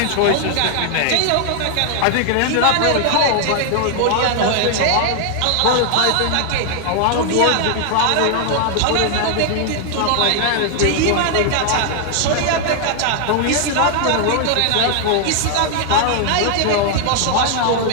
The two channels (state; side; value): different; both; correlation 0.00